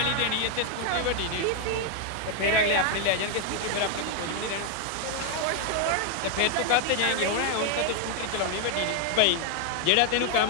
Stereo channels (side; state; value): both; different; correlation 0.00